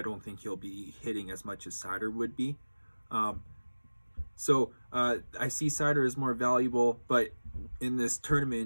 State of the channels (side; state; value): both; inverted; correlation -1.00